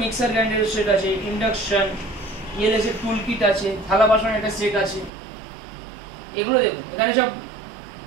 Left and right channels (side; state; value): left; drops out; at 5.1 s